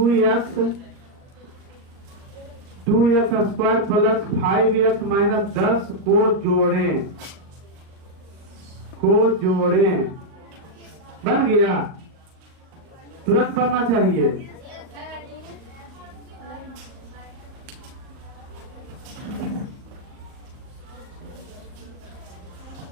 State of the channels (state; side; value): late; left; 38 ms